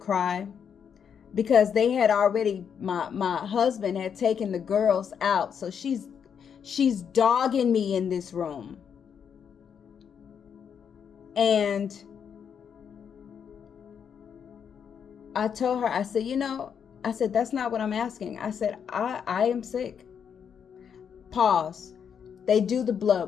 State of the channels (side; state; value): right; quieter; 7.5 dB